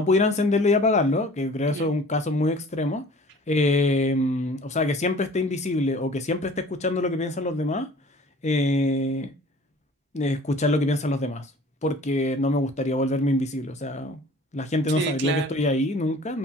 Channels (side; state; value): both; normal; correlation 0.48